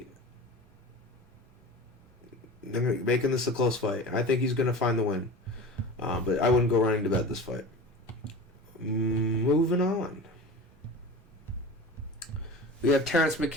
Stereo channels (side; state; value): both; normal; correlation 0.34